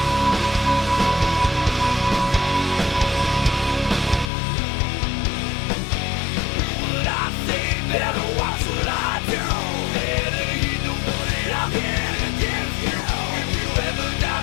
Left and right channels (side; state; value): right; drops out; at 4.3 s